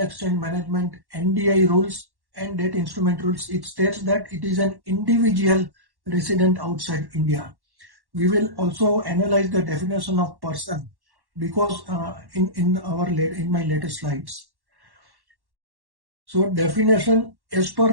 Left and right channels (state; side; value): late; left; 1.1 ms